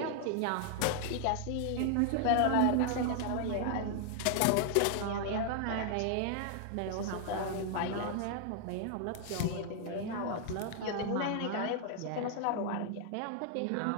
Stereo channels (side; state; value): both; different; correlation 0.00